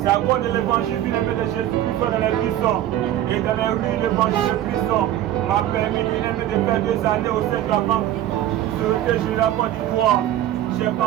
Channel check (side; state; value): left; quieter; 12.6 dB